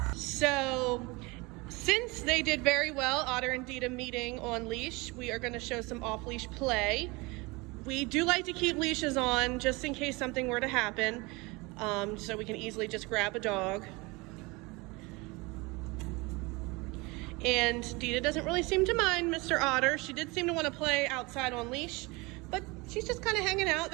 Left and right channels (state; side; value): quieter; left; 25.1 dB